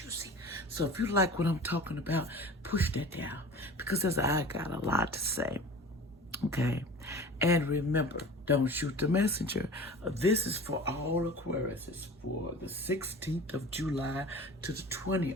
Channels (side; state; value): both; normal; correlation 0.38